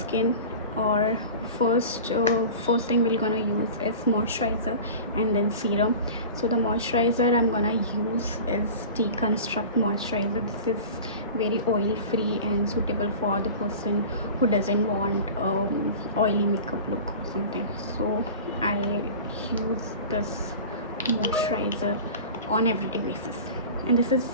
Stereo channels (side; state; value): both; inverted; correlation -0.36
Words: Or first thing we're gonna use is moisturizer and then serum. So the moisturizer I'm gonna use is Deconstruct moisturizer. This is very oil free and suitable for the person who doesn't want oily makeup look or something. So I use this moisturizer on everyday basis, and this is